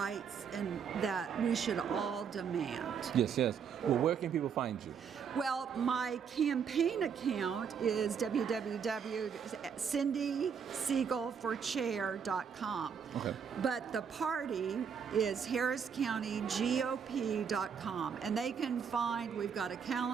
and that we should all demand. Yes, yes. Well, where can people find you? Well, my campaign account is www.cindysiegalforchair.com. Okay. But the party is harriscountygop.com. And they can find, we've got a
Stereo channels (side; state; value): left; quieter; 6.9 dB